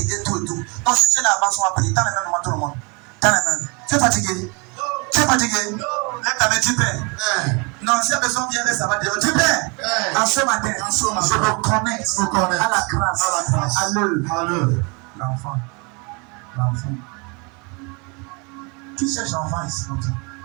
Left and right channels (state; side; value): quieter; left; 30.9 dB